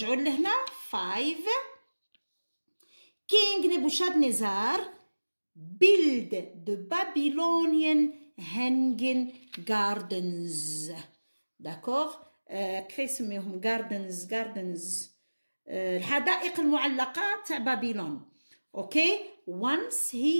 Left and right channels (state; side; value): inverted; both; correlation -1.00